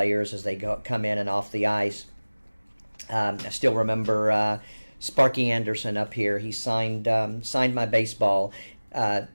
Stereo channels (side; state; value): both; inverted; correlation -1.00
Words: as they come in and off the ice. I still remember Sparky Anderson up here. He signed my baseball.